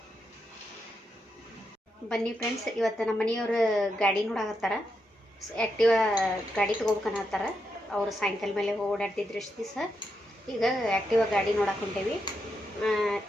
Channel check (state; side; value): normal; both; correlation 0.83